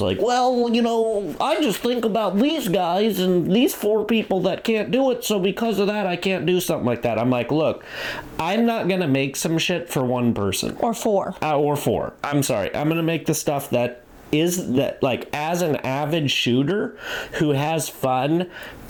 well, I just think about these guys and these 4 people that can't do it, so because of that, I can't do something like that. I'm like, look, I'm not going to make some shit for one person. Or 4. Or 4. I'm sorry. I'm going to make the stuff that is that, like, as an avid shooter who has fun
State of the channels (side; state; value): both; identical; correlation 1.00